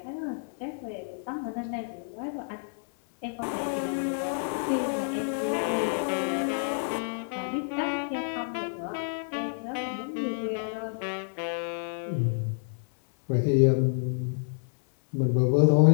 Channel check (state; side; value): silent; right; 59 dB below the other